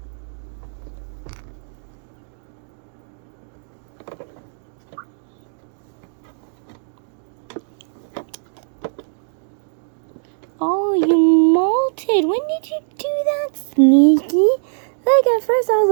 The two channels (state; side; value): silent; left; digital silence